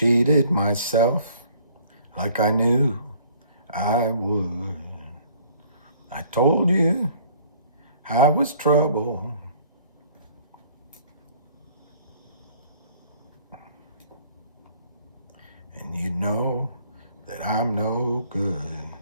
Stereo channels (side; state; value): both; inverted; correlation -0.56